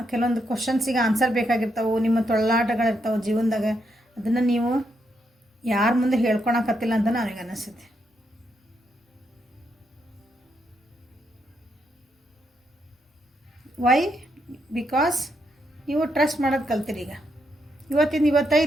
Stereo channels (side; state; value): both; normal; correlation 0.79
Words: ಕೆಲವೊಂದು ಕ್ವಶನ್ಸಿಗೆ ಆನ್ಸರ್ ಬೇಕಾಗಿರ್ತಾವೆ, ನಿಮ್ಮ ತೊಳ್ಳಾಟಗಳಿರ್ತಾವೆ ಜೀವನದಾಗ. ಅದನ್ನು ನೀವು ಯಾರ ಮುಂದೆ ಹೇಳ್ಕೊಳಕತ್ತಿಲ್ಲ ಅಂತ ನನಗೆ ಅನಿಸುತ್ತೆ. ವೈ? ಬಿಕಾಸ್ ನೀವು ಟ್ರಸ್ಟ್ ಮಾಡೋದು ಕಲ್ತಿರಿ. ಈಗ